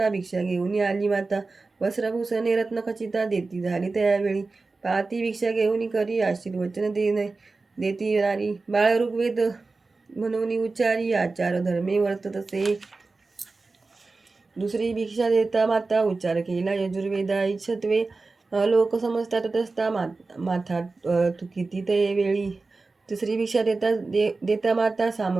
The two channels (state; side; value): quieter; left; 3.8 dB